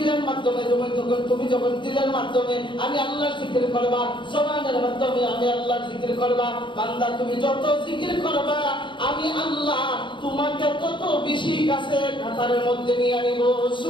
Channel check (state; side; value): late; right; 0.23 ms